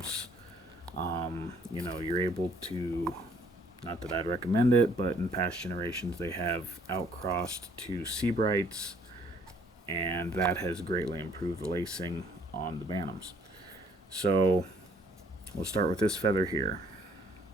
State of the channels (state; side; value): normal; both; correlation 0.62